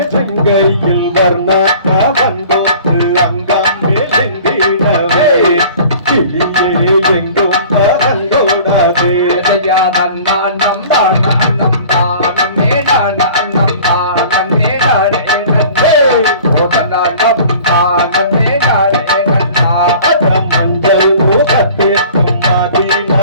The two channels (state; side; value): inverted; both; correlation -0.46